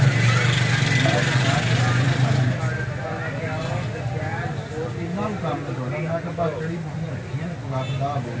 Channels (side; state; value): both; identical; correlation 1.00